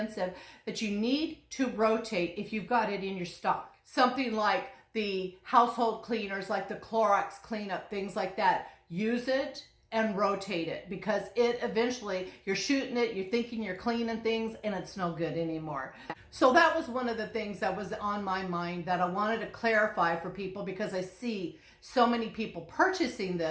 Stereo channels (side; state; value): both; identical; correlation 1.00